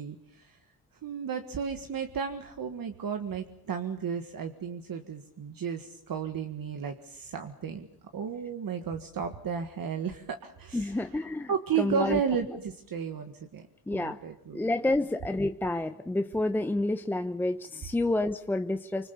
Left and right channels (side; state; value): both; normal; correlation 0.45